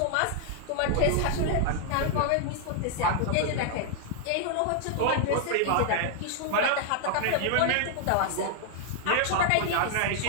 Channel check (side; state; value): both; different; correlation 0.00